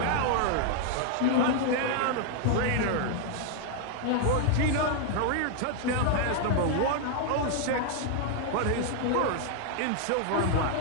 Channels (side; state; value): both; different; correlation 0.00